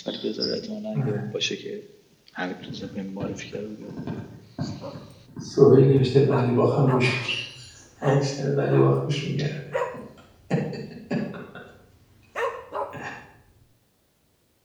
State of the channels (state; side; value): identical; both; correlation 1.00